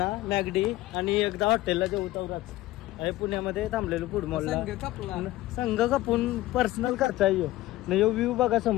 मॅगडी आणि एकदा हॉटेलला जेवू तवराच आहे. पुण्यामध्ये थांबलेलो फूड मॉलला. संघ कापून पर्सनल खर्च आहे यो. नाही यो व्ह्यू बघा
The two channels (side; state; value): right; quieter; 16.9 dB